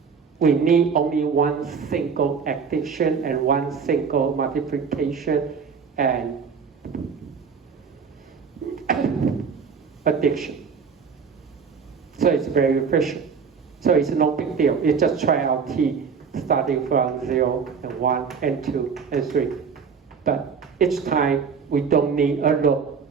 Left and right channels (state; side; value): quieter; left; 6.0 dB